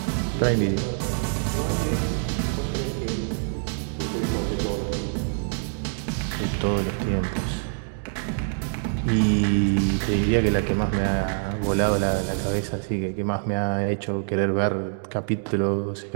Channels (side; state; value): left; silent; digital silence